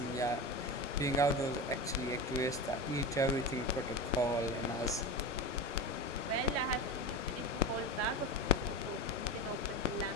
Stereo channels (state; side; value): normal; both; correlation 0.24